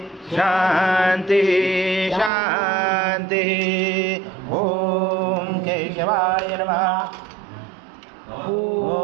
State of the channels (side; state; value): left; drops out; at 2.3 s